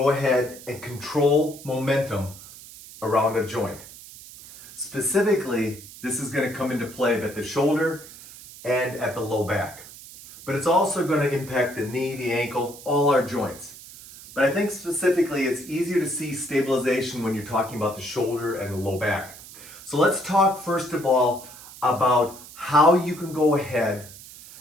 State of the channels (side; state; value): right; noise; hiss, 17 dB below the sound